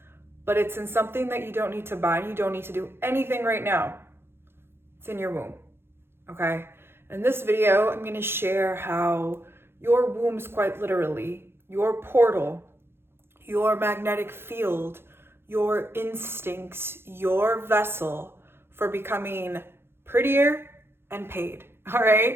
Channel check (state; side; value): late; left; 0.11 ms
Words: but it's in something that you don't need to buy. You don't need to do anything right now. It's in your womb, okay? In this video, I'm gonna share how your womb is quite literally your portal, your magnetic field, your instincts, your vessel for becoming prettier and paid, all